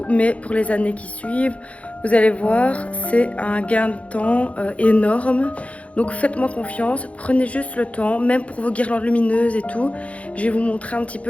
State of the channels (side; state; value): right; late; 0.064 ms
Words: Mais pour les années qui suivent, vous allez voir, c'est un gain de temps énorme. Donc faites-moi confiance, prenez juste le temps, même pour vos guirlandes lumineuses et tout. Je vais vous montrer un petit